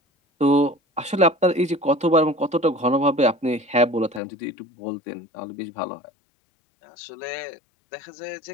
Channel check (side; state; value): right; drops out; at 4.2 s